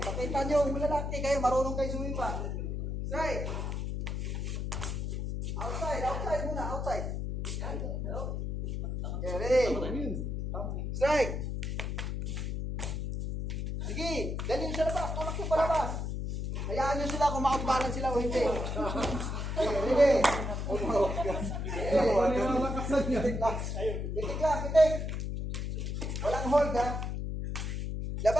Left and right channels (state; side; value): noise; left; hum, 2 dB below the sound